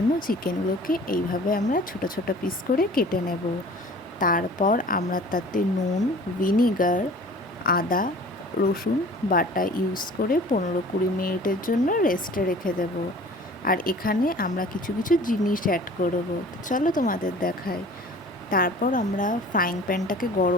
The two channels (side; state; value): both; normal; correlation 0.46